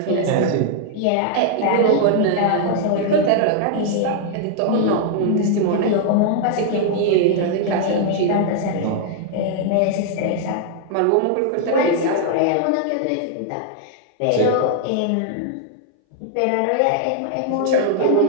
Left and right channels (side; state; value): both; different; correlation 0.00